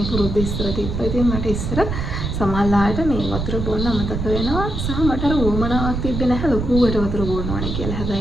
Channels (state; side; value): noise; right; rumble, 3 dB below the sound